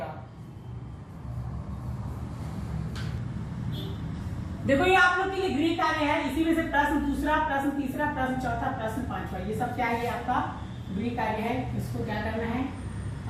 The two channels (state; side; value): identical; both; correlation 1.00